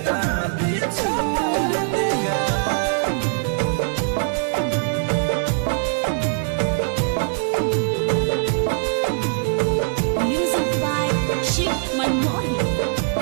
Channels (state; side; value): silent; left; digital silence